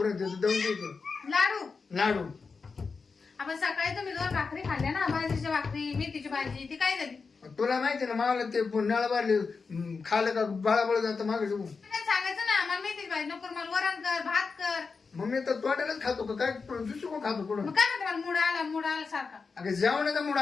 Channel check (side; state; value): right; quieter; 4.8 dB